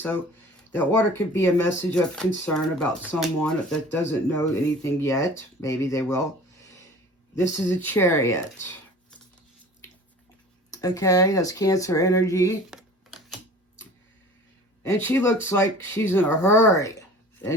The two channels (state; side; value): normal; both; correlation 0.44